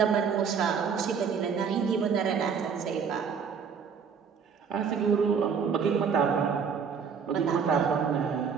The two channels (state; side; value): quieter; left; 6.5 dB